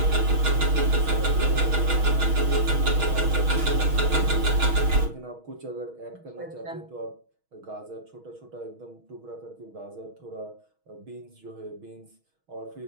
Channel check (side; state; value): left; late; 6.3 ms